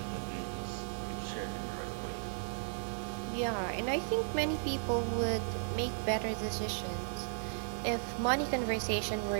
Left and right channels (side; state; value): left; silent; digital silence